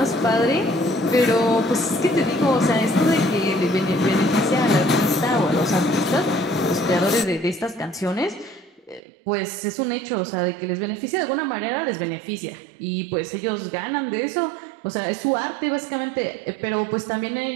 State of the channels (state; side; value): drops out; left; at 9.0 s